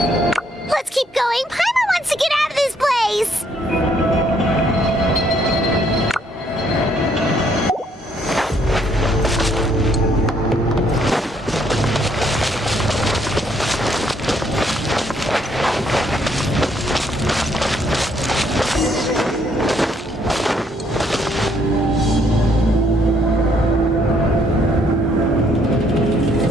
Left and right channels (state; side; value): normal; both; correlation 0.69